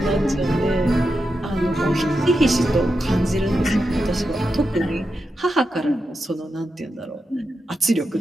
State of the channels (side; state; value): both; normal; correlation 0.88